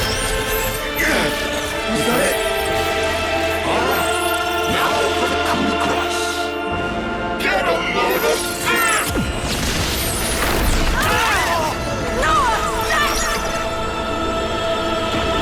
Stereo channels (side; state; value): both; identical; correlation 1.00